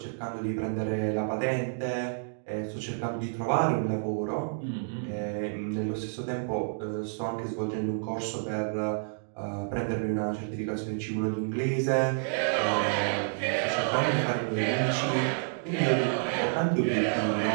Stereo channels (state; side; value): silent; left; digital silence